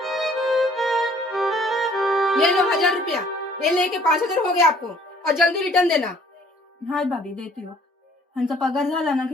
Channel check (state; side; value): normal; both; correlation 0.58